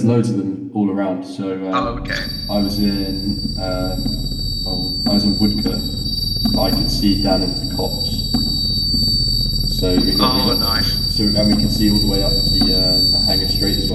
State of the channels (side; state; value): both; identical; correlation 1.00